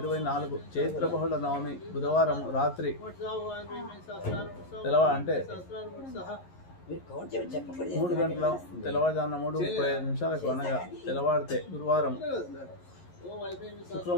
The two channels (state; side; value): late; right; 11 ms